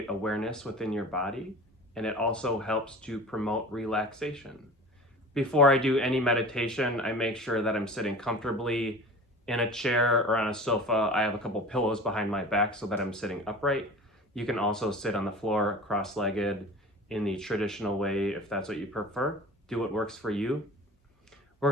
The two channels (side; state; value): both; normal; correlation 0.38